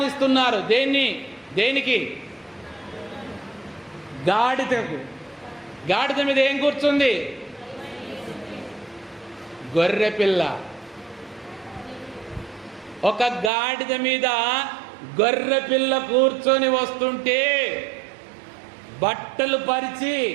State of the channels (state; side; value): drops out; left; at 13.5 s